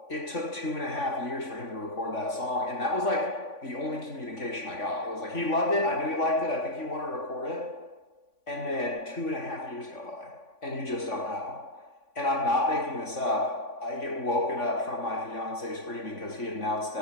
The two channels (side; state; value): right; late; 3.5 ms